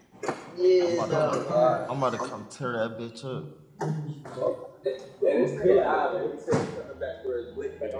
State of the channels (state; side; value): identical; both; correlation 1.00